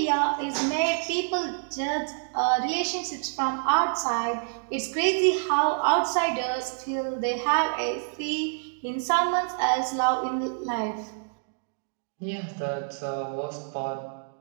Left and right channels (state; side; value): silent; left; digital silence